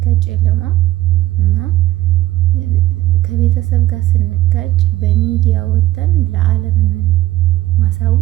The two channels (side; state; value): left; quieter; 15.9 dB